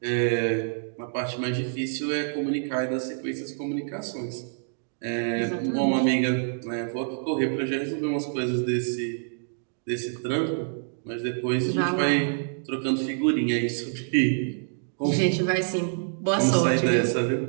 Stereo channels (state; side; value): silent; left; digital silence